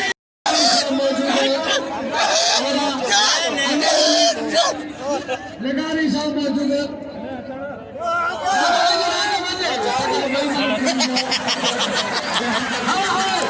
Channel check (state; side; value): identical; both; correlation 1.00